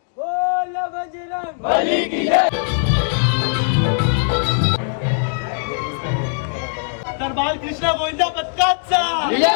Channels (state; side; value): silent; right; digital silence